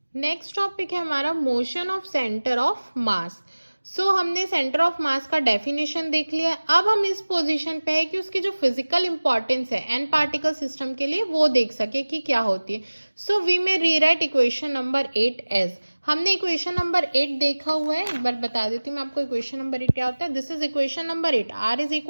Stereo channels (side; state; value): both; inverted; correlation -1.00